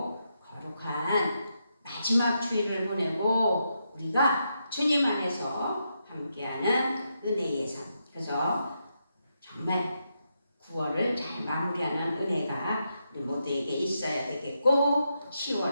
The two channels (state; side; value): inverted; both; correlation -0.83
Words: 거룩한 마지막 주일을 보내고 우리가 주님 안에서 함께하는 은혜의 삶. 그래서 정말 9월을 잘 마무리하는 은혜가 우리 모두에게 있어야 되겠고